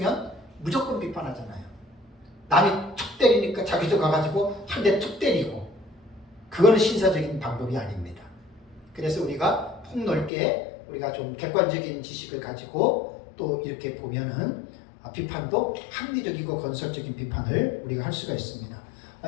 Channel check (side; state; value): right; drops out; at 10.3 s